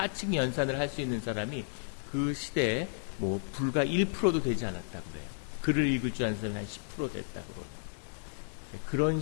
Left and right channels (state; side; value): silent; right; digital silence